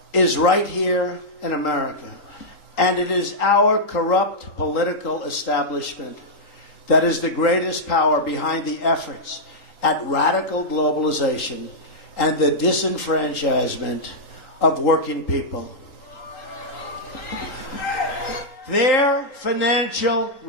is right here in America. And it is our corrupt political establishment that is the greatest power behind the efforts at radical globalization and the disenfranchisement of working people. Their financial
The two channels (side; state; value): right; late; 3.8 ms